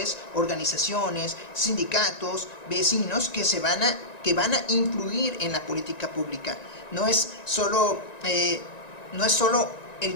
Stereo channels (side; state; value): right; late; 1.9 ms